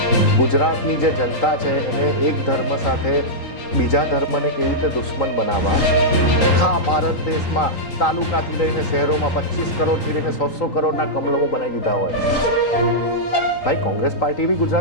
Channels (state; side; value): late; right; 3.8 ms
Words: ગુજરાતની જે જનતા છે એને એક ધર્મ સાથે બીજા ધર્મને કેવી રીતે દુશ્મન બનાવવા, આખા ભારત દેશમાં તાલુકાથી લઈને શહેરોમાં 25 કરોડથી લઈને 100 કરોડના કમલમો બનાવી દીધા હોય. ભાઈ, કોંગ્રેસ પાર્ટી બી